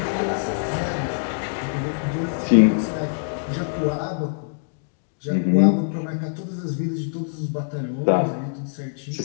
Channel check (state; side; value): silent; right; digital silence